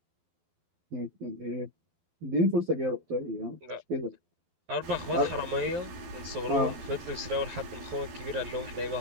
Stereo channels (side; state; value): left; late; 12 ms